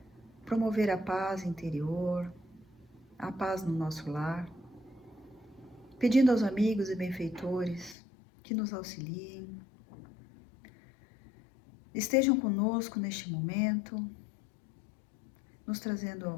promover a paz interior, a paz no nosso lar, pedindo aos amigos e benfeitores que nos auxiliem, estejam conosco neste momento, nos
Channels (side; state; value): right; drops out; at 8.0 s